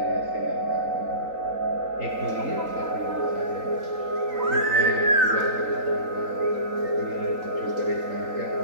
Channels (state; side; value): late; left; 3.9 ms